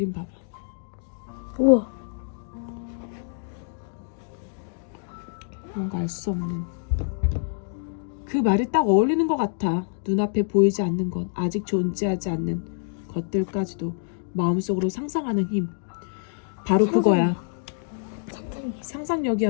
봐봐. 우와. 뭔가 알 수 없는. 그 말이 딱 어울리는 것 같아. 눈앞에 보이지 않는 것, 아직 존재하지 않는 것들까지도 마음속으로 상상하는 힘. 바로 그거야.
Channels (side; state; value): right; silent; digital silence